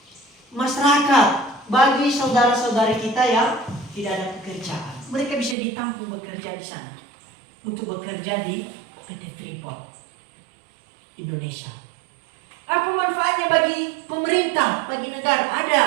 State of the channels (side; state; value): left; drops out; at 5.6 s